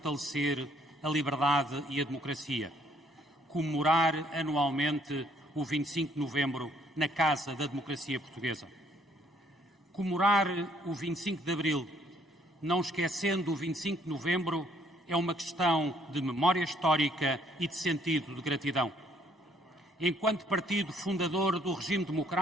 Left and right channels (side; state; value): both; normal; correlation 0.65